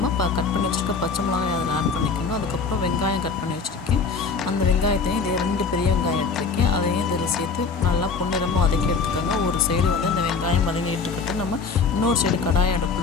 கட் பண்ணி வச்சுருக்க பச்சை மிளகாய் அதில் ஆட் பண்ணிக்கணும். அதுக்கப்புறம் வெங்காயம் கட் பண்ணி வச்சுருக்கேன். அந்த வெங்காயத்தையும் இது 2 பெரிய வெங்காயம் எடுத்துருக்கேன். அதையும் இதில் சேர்த்து நல்லா பொன்னிறமாக வதக்கி எடுத்துக்கோங்க. ஒரு சைடு வந்து இந்த வெங்காயம் வதங்கிட்டு இருக்கட்டும். நம்ம இன்னொரு சைடு கடாயை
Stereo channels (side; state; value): right; quieter; 4.9 dB